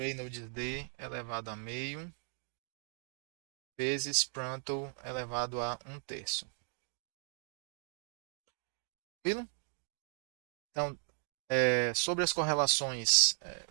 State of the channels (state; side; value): silent; left; 53 dB below the other